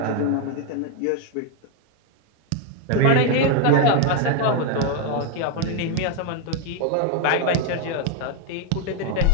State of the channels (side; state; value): both; different; correlation 0.01